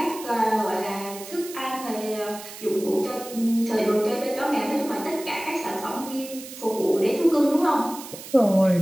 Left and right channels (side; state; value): right; noise; hiss, 14 dB below the sound